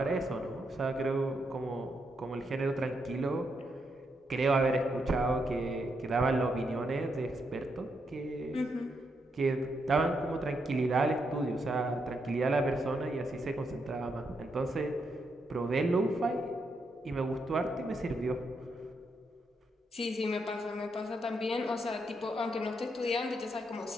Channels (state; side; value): normal; both; correlation 0.80